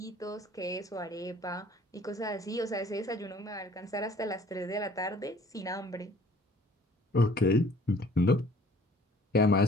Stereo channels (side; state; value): both; normal; correlation 0.54